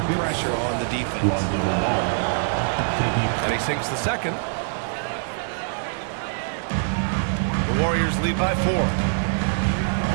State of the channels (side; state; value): left; silent; digital silence